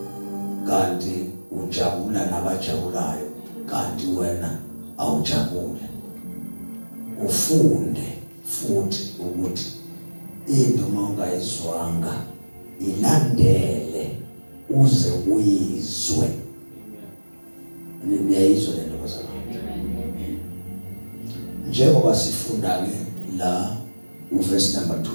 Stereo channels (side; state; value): both; inverted; correlation -1.00